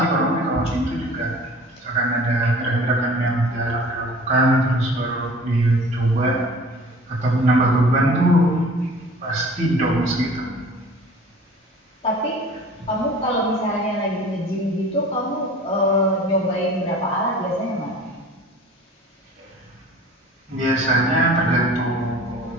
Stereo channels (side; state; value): both; normal; correlation 0.45